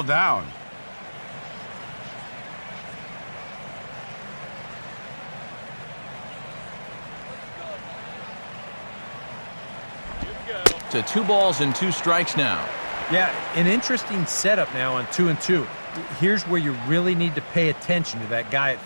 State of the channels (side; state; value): both; inverted; correlation -1.00